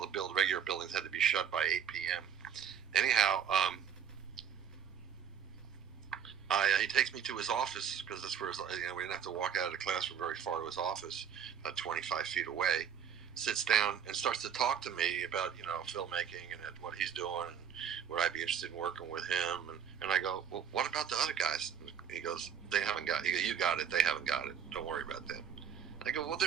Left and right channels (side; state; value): left; quieter; 8.1 dB